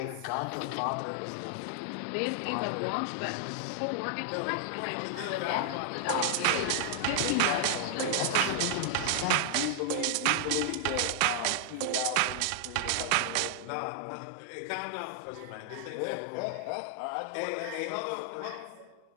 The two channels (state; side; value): different; both; correlation -0.01